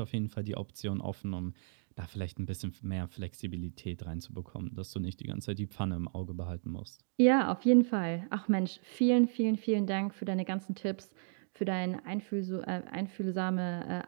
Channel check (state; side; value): silent; left; digital silence